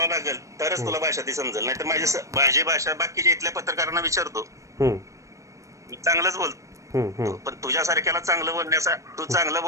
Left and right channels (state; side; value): late; left; 0.15 ms